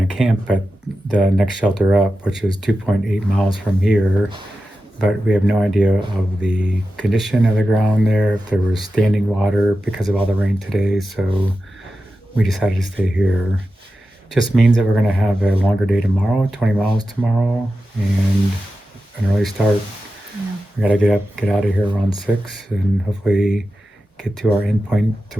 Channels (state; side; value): normal; both; correlation 0.92